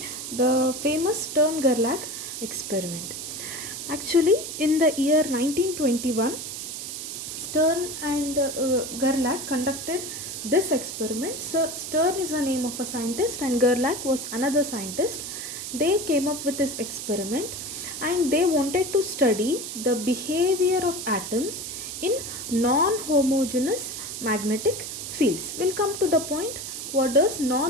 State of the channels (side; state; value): right; noise; hiss, 7 dB below the sound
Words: the famous Stern-Gerlach experiment. Actually, in the year 1921, Stern and Gerlach conducted this experiment. So Stern is the name of a scientist and Gerlach was another scientist. They came up with this experiment and they wanted to study the behavior of atoms in non-homogeneous magnetic fields. We'll come to the point, what does